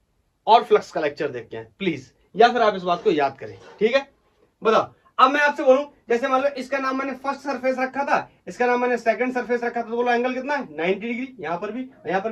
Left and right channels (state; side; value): identical; both; correlation 1.00